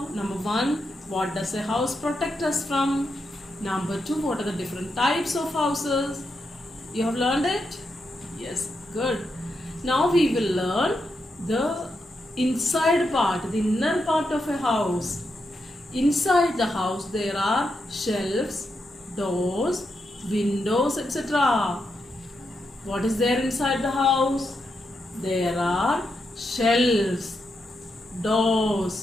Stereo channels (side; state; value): both; normal; correlation 0.84